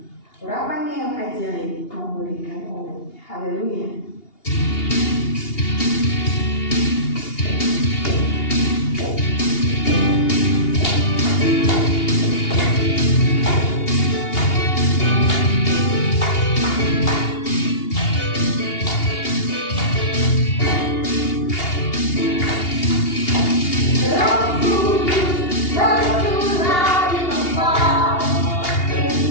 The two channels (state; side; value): late; right; 2.8 ms